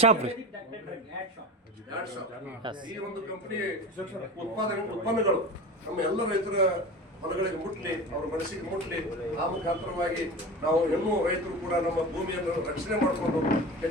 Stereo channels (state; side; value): normal; both; correlation 0.31